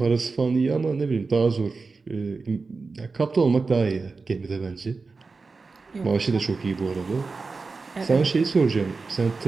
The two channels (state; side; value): quieter; left; 4.2 dB